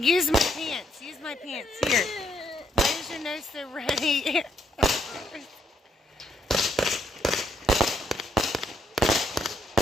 my pants. Use my pants. Here. Why is your nose so ready?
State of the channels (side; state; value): both; normal; correlation 0.73